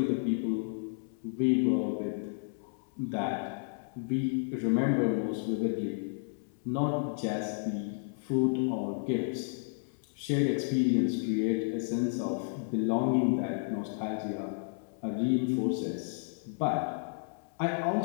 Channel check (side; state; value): right; silent; 56 dB below the other